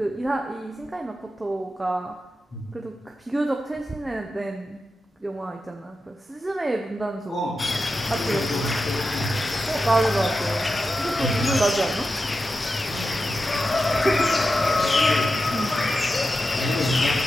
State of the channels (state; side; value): normal; both; correlation 0.90